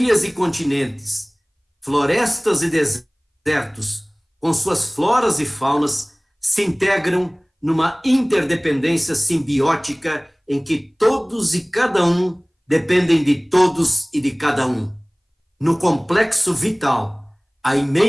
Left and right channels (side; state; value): both; identical; correlation 1.00